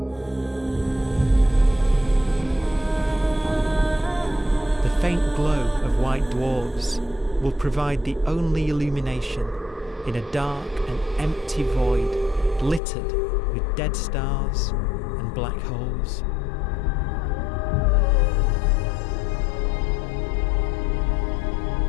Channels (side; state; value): right; drops out; at 12.8 s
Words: The faint glow of white dwarfs will provide the only illumination in a dark and empty void littered with dead stars and black holes.